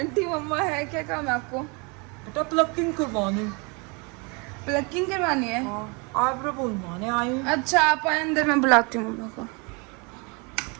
मम्मा है, क्या काम है आपको? बेटा प्लकिंग करवानी। प्लकिंग करवानी है? आईब्रो बनवाने आई हूँ। अच्छा आप आए अंदर, मैं बुलाती हूँ मम्मा को।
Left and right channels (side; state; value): left; quieter; 31.2 dB